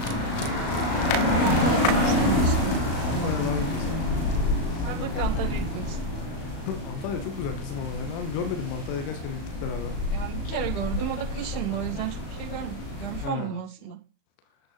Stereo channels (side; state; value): right; late; 36 ms